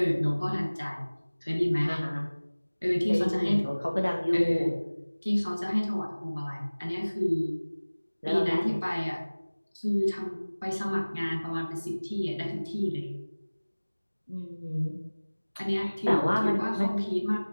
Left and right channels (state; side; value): inverted; both; correlation -1.00